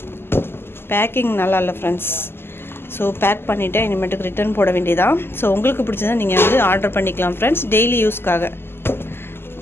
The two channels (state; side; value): late; right; 0.11 ms